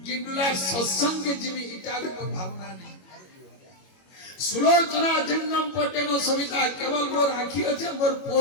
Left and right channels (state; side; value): late; right; 21 ms